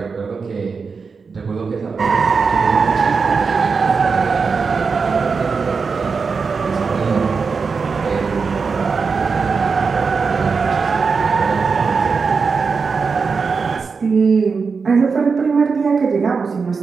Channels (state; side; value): quieter; left; 5.1 dB